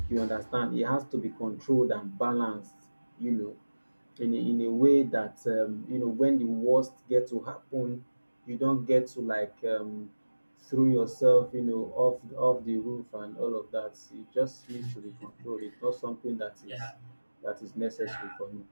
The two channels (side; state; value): both; inverted; correlation -1.00